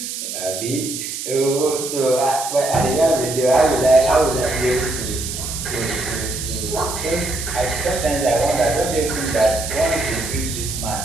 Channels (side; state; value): right; noise; hiss, 6 dB below the sound